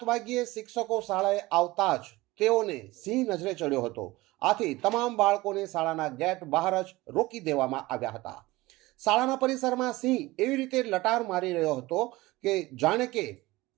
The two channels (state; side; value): quieter; left; 20.0 dB